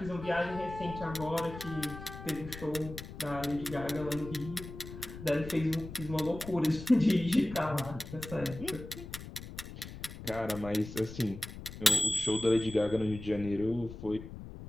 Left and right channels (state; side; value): noise; left; rumble, 12 dB below the sound